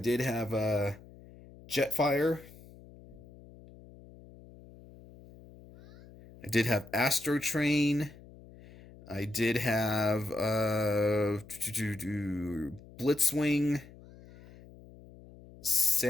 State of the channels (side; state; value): left; noise; hum, 21 dB below the sound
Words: have Jetfire. I did have Astro Train. I did have Blitzwing,